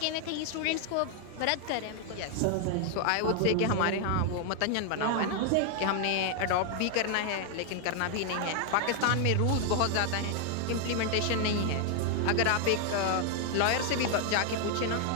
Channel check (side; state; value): both; different; correlation 0.00